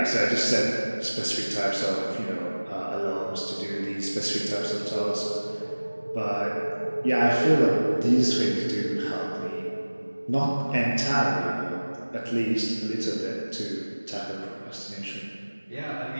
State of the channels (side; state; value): both; inverted; correlation -1.00